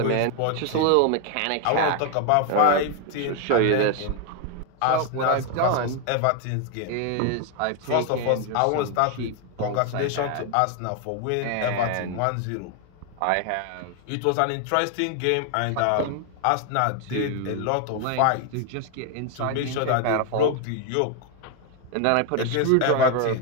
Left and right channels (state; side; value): different; both; correlation 0.01